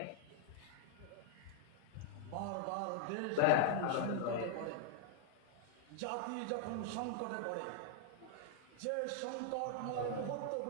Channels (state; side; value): different; both; correlation -0.01